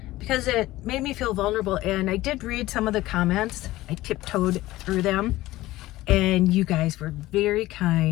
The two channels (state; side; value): quieter; right; 17.1 dB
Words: because it made me feel vulnerable. And I did read some of the comments. I tiptoed through them, and you guys were very